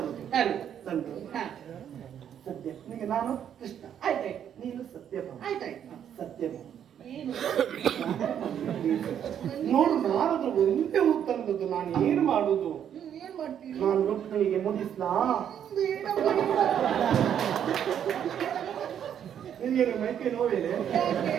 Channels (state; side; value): quieter; left; 9.2 dB